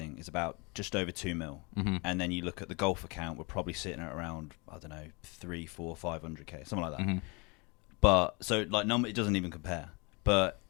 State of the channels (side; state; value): right; quieter; 29.4 dB